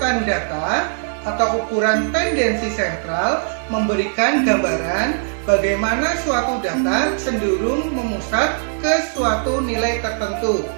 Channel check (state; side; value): silent; left; digital silence